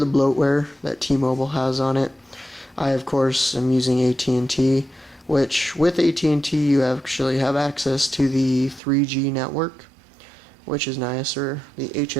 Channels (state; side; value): drops out; left; at 8.8 s